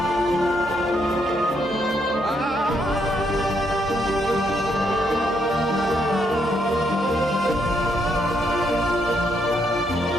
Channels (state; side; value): normal; both; correlation 0.75